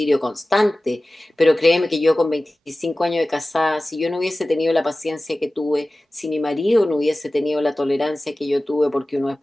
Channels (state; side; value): normal; both; correlation 0.96